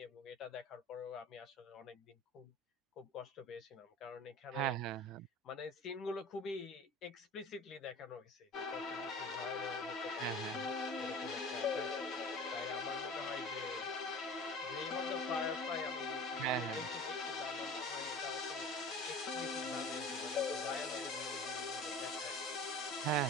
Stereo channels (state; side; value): normal; both; correlation 0.39